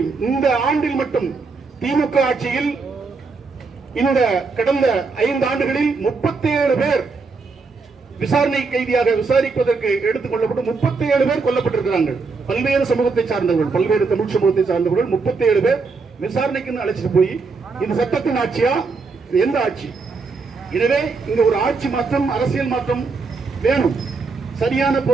இந்த ஆண்டில் மட்டும் திமுக ஆட்சியில் இந்த கடந்த 5 ஆண்டுகளில் 37 பேர் விசாரணை கைதியாக விசாரிப்பதற்கு எடுத்துக் கொள்ளப்பட்டு 37 பேர் கொல்லப்பட்டிருக்கிறார்கள். பல்வேறு சமூகத்தை சார்ந்தவர்கள், பல்வேறு தமிழ் சமூகத்தை சார்ந்தவர்கள் 37 பேர் விசாரணைக்கு அழைச்சிட்டு போய் இது சட்டத்தின் ஆட்சியா, எந்த ஆட்சி? எனவே இங்க ஒரு ஆட்சி மாற்றம், அரசியல் மாற்றம் வேணும். சரியான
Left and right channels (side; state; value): left; quieter; 4.4 dB